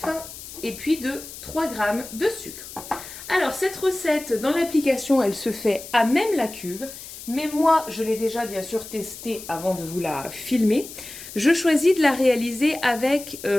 et puis de 3 g de sucre. Alors cette recette dans l'application elle se fait à même la cuve, mais moi je l'ai déjà bien sûr testée avant de vous la filmer. Je choisis de la réaliser avec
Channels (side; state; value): left; noise; hiss, 13 dB below the sound